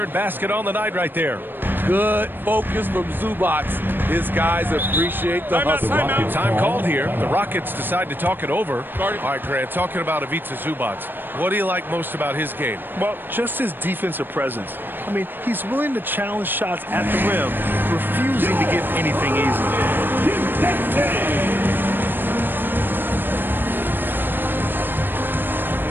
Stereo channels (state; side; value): late; left; 0.095 ms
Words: basket on the night right there. Good focus from Zubac. His guys appreciate the hustle. Time called here. The Rockets decide to talk it over. All right, Grant, talking about Ivica Zubac. What do you like most about his game? Well, just his defensive presence. I mean, he's willing to challenge shots at the rim, refusing to give anything easy.